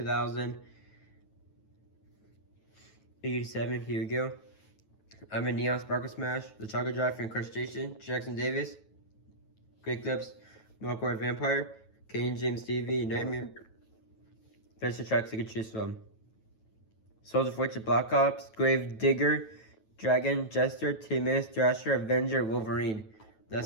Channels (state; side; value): late; right; 9.2 ms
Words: Here we go. I'm in Neon Sparkle Smash, the Chocolate Drive for Incrustation, Jackson Davis, Great Clips, Milkboard Vampire, Kane James TV, Nightmare. There's the tracks you can choose from. Soldier Fortune Black Ops, Grave Digger, Dragon, Jester, Timus, Thrasher, Avenger, Wolverine.